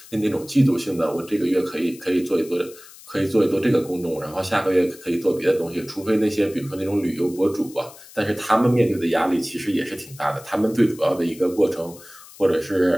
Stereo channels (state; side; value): noise; left; hiss, 20 dB below the sound